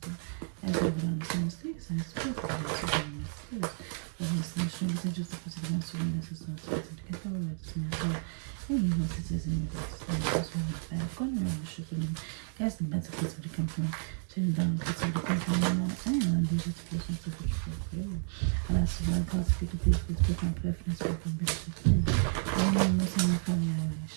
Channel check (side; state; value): left; silent; 57 dB below the other